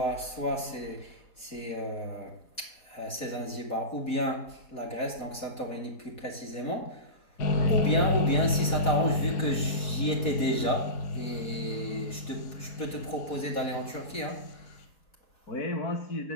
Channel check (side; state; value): right; late; 4.1 ms